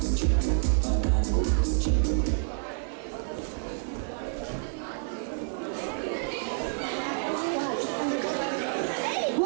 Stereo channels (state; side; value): silent; left; 59 dB below the other